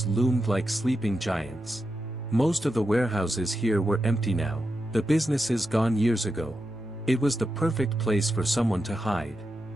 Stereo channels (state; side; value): normal; both; correlation 0.88